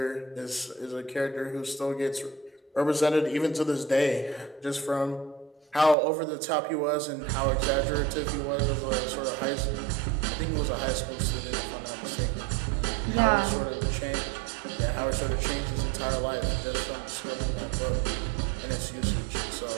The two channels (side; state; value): left; drops out; at 6.0 s